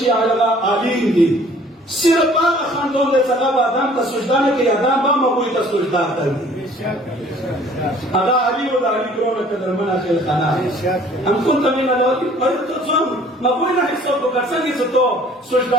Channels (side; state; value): both; normal; correlation 0.53